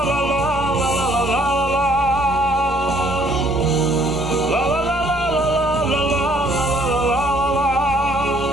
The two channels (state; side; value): normal; both; correlation 0.63